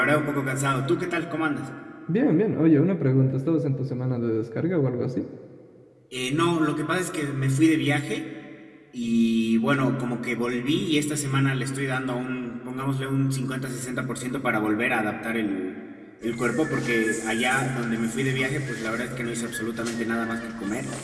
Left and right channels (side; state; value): both; identical; correlation 1.00